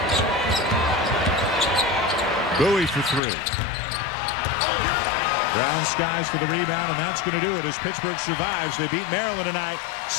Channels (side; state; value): right; drops out; at 3.2 s